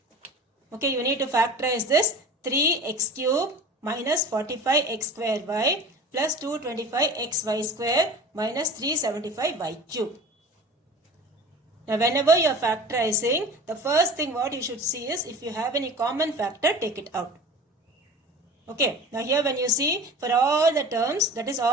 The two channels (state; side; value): normal; both; correlation 0.38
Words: Okay, you need to factorize this 3x cube minus 45x square y plus 225xy square minus 375y cube. Now, whenever you are factorizing, the first thing what you should see is if you have any common factor, take it out. Okay. Now, here when you see for all the terms, that is